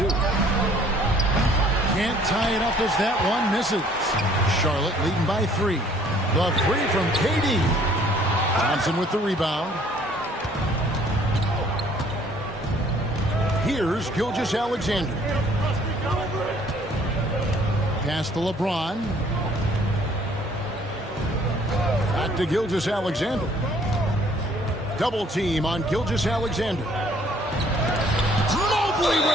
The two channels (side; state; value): both; normal; correlation 0.59